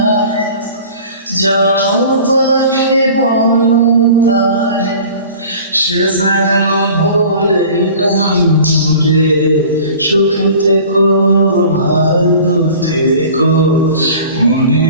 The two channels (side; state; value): both; inverted; correlation -0.44